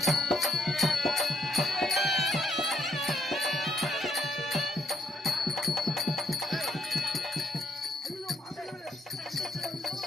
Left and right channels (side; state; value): both; normal; correlation 0.73